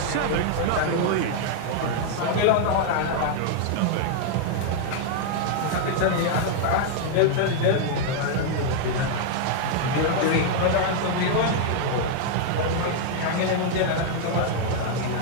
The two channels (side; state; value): both; different; correlation 0.00